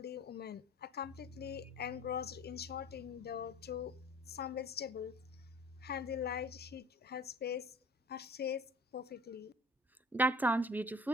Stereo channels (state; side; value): normal; both; correlation 0.46